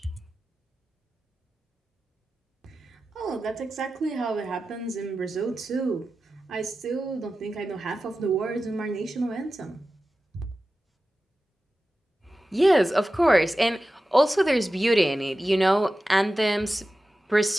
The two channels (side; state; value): both; normal; correlation 0.94